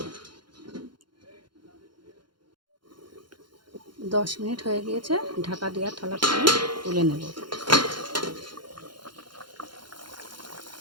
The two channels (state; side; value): late; left; 0.72 ms